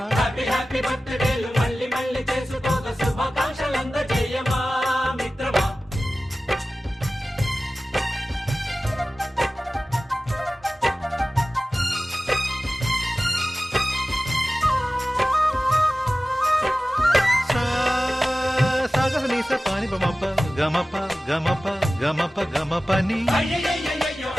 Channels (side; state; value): both; normal; correlation 0.96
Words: హ్యాపీ హ్యాపీ బర్త్డేలు మళ్ళీ మళ్ళీ చేసుకోక శుభాకాంక్షలందజేయమా మిత్రమా. సాగనీస పాని బమప గమప గమప గమప గమపని